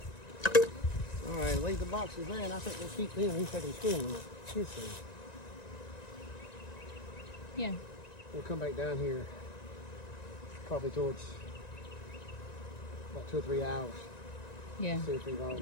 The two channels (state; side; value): late; right; 1.9 ms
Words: All right, leave the boxes there, and I think we'll keep them. He's taking spoon. Yeah. We'll come back down here probably towards about 2 or 3 hours. Yeah. See if they've all got